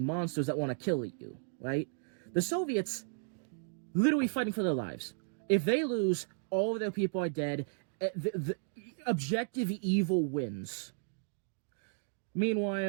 that want to kill you, right? The Soviets literally fighting for their lives. If they lose, all of their people are dead. The objective evil wins.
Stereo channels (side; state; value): left; silent; digital silence